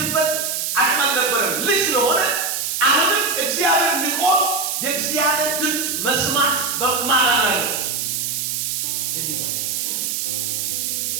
አቅም አልነበረም ልጅ ስለሆነ አሁንም እግዚአብሔር ንቆ የእግዚአብሔር ድምፅ መስማት በማራና ነው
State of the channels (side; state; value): right; noise; hiss, 1 dB below the sound